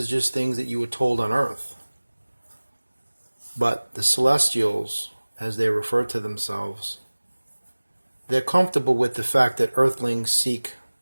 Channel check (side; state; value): both; inverted; correlation -1.00